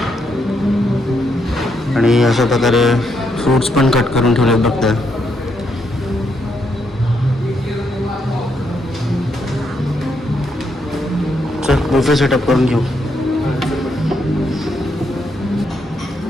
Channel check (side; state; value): both; normal; correlation 0.78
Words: आणि अशा प्रकारे फ्रूट्स पण कट करून ठेवलेत बघताय. चल बुफे सेटअप करून घेऊ.